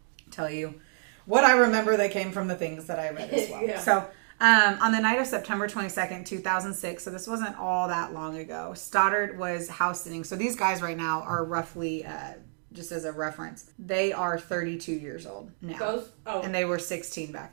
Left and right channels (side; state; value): left; silent; 57 dB below the other